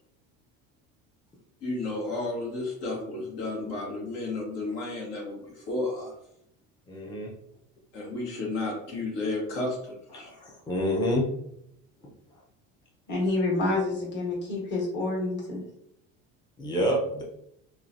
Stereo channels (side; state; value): both; normal; correlation 0.41